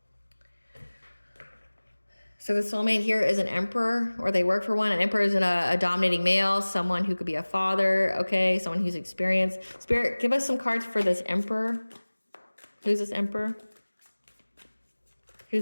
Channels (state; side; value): inverted; both; correlation -1.00